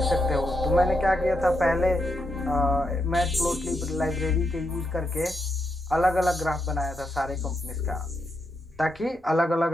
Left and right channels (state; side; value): normal; both; correlation 0.82